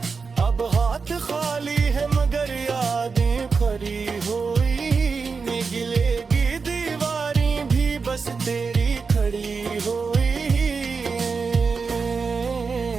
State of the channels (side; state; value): left; quieter; 5.0 dB